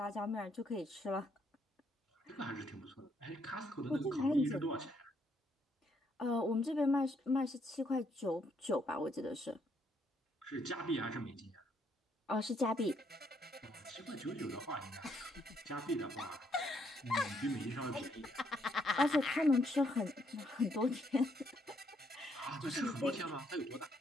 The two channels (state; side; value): normal; both; correlation 0.72